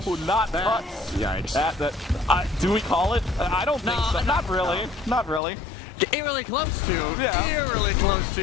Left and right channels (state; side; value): drops out; right; at 5.4 s